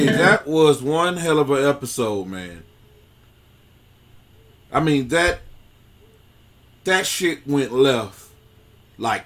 that was one hell of an episode, man. I mean, that shit went left like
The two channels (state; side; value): identical; both; correlation 1.00